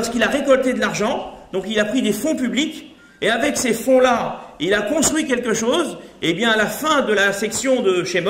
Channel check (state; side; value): identical; both; correlation 1.00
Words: a récolté de l'argent, donc il a pris des fonds publics, et avec ces fonds-là, il a construit quelque chose, et bien à la fin de la section de